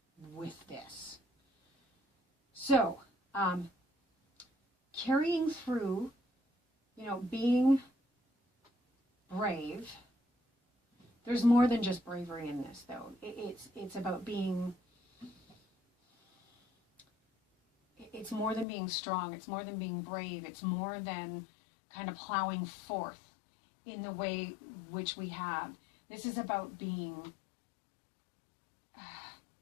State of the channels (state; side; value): drops out; right; at 18.7 s